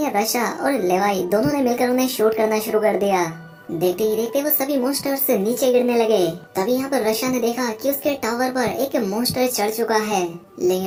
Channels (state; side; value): identical; both; correlation 1.00